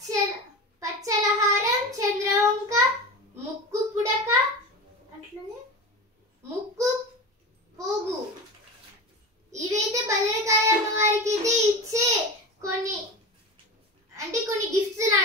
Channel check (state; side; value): normal; both; correlation 0.28